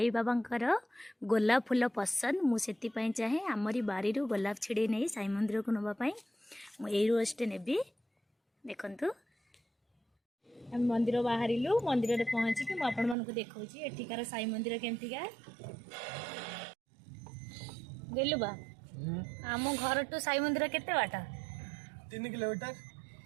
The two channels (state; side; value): drops out; left; at 13.2 s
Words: बाबांकर गोलाप फूल पसंद, मु सेति पई चाहे आमरी बारी रो गोलाप छिड़े नै साई मंदिर को नबा पई मु एई रोजटे नेबी। देखंतु हम मंदिर बाहरिलु, मंदिर रे पहुंची कि मु आपण मानकु देखौची एठिकार साई मंदिर केमतिका गेलु बा। आम घर टू साई मंदिर केते बाटा? 3 किलोमीटर।